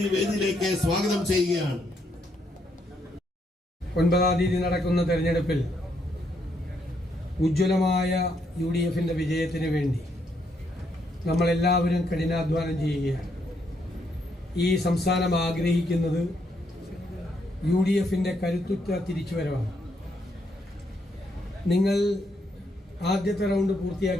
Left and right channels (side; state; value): both; normal; correlation 0.76